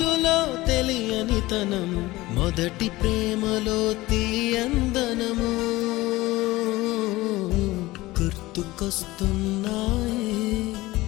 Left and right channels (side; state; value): right; quieter; 19.1 dB